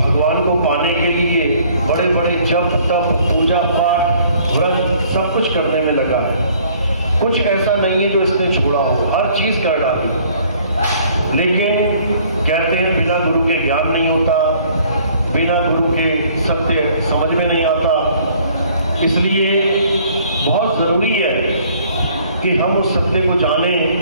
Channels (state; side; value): inverted; both; correlation -0.59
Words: को पाने के लिए बड़े बड़े जप तप पूजा पाठ व्रत सब कुछ करने में लगा है। कुछ ऐसा नहीं है जो इसने छोड़ा हो, हर चीज कर डाली। लेकिन कहते हैं बिना गुरु के ज्ञान नहीं होता, बिना गुरु के सत्य समझ में नहीं आता। इसलिए बहुत जरूरी है कि हम उस सत्य को जानें,